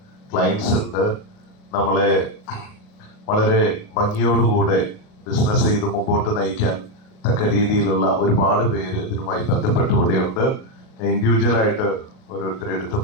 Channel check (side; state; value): right; late; 38 ms